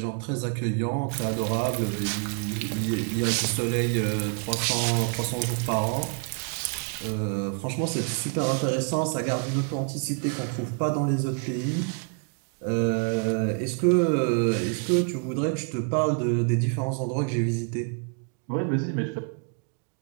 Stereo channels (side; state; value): left; quieter; 39.6 dB